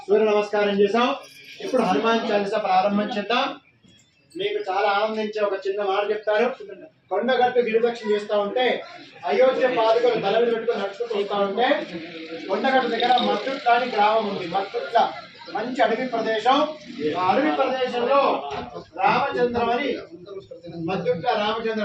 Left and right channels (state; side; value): identical; both; correlation 1.00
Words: సూర్య నమస్కారం చేసాం. ఇప్పుడు హనుమాన్ చాలీసా ప్రారంభం చేద్దాం. మీకు చాలా ఆనందించే ఒక చిన్న మాట చెప్తారు. కొండగట్టు గిరిపక్షం చేస్తూ ఉంటే అయోధ్య పాదుకలు తల మీద పెట్టుకుని నడుచుకుంటూ వస్తూ ఉంటే కొండగట్టు దగ్గర మత్తుట్ల అని గ్రామం ఉంది. మత్తుట్ల మంచి అడవి ప్రదేశం. ఆ అడవి ప్రదేశంలో రామచంద్రం అని మత్తుట్ల